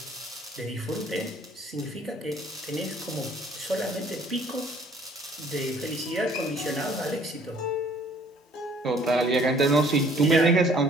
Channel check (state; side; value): normal; both; correlation 0.57